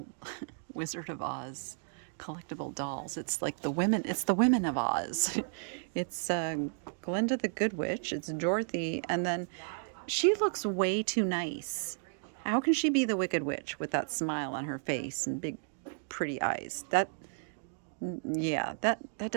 Wizard of Oz collectible dolls. It's like the women of Oz. It's Glinda the Good Witch, it's Dorothy, and then she looks way too nice. How can she be the Wicked Witch with that smile on her face and big pretty eyes? That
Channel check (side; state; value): left; silent; digital silence